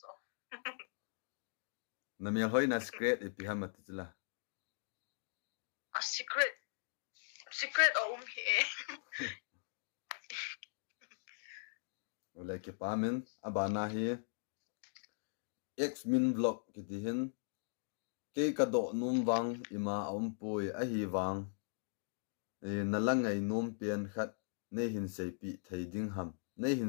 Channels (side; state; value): right; silent; digital silence